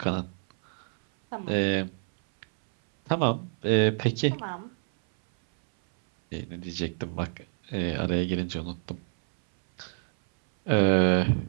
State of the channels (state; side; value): silent; left; 60 dB below the other